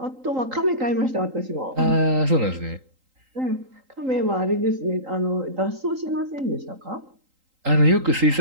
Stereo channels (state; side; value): late; left; 3.8 ms